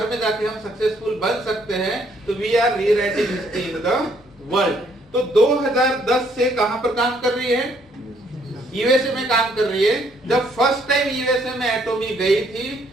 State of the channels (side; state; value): both; normal; correlation 0.67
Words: में जाके हम सक्सेसफुल बन सकते हैं, तो we are rewriting history in the world. तो 2010 से कहां पर काम कर रही है? यूएसए में काम कर रही है। जब फर्स्ट टाइम यूएसए में एटोमी गई थी